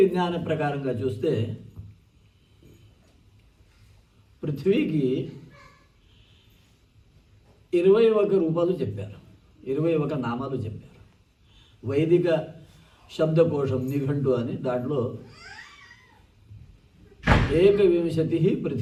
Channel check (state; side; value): identical; both; correlation 1.00